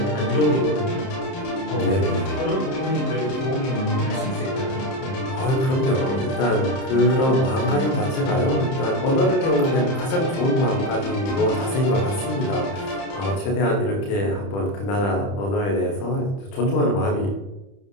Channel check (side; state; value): right; late; 30 ms